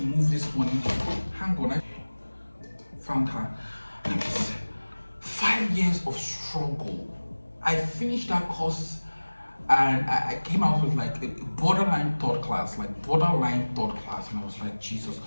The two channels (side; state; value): both; inverted; correlation -1.00